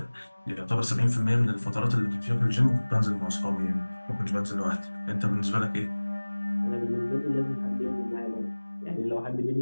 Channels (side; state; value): both; inverted; correlation -1.00